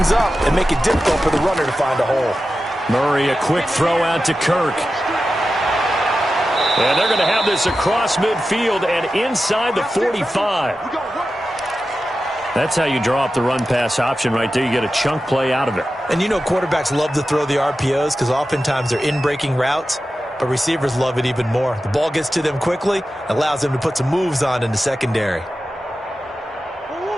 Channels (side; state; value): both; normal; correlation 0.93